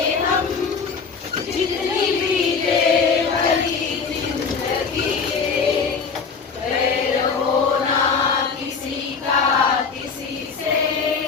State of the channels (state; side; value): quieter; right; 5.4 dB